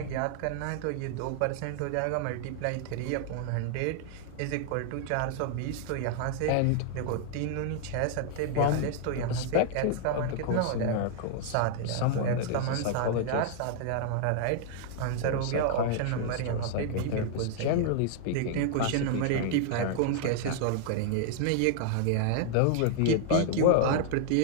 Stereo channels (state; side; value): different; both; correlation -0.01